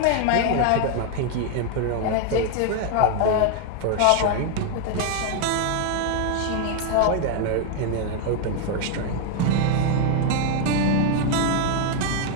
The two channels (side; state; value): both; different; correlation 0.00